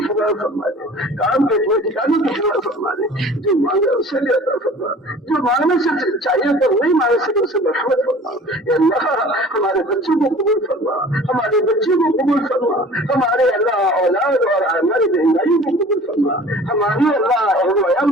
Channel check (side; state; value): both; normal; correlation 0.45